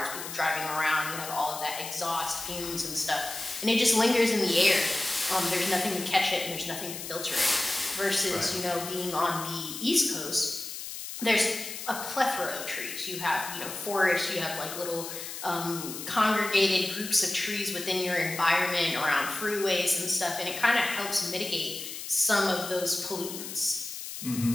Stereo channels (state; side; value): noise; left; hiss, 8 dB below the sound